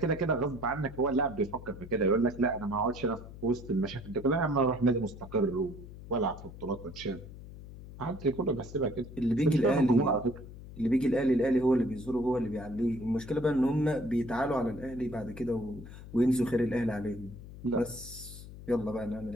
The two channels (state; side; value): noise; left; hum, 14 dB below the sound